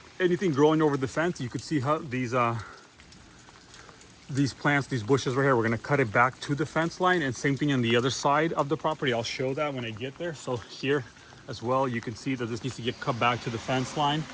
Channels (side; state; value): both; identical; correlation 1.00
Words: anything growing over the fence, you could see how these plants, these bushes right here, we're going to cut it back to the fence line, and same thing on the other side of the property. I'll show that when I get there. So here as well, you can see that this needs to get cut back to the fence line.